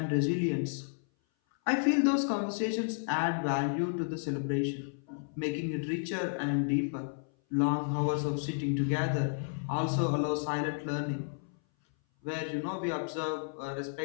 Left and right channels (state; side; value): silent; right; 56 dB below the other